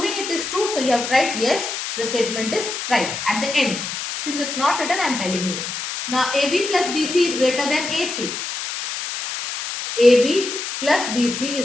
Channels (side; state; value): left; noise; hiss, 5 dB below the sound